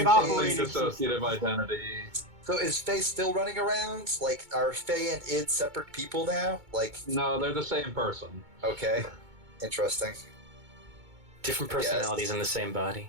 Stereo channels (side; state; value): left; late; 2.2 ms